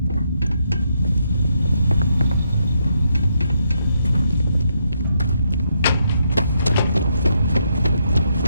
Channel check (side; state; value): both; inverted; correlation -0.78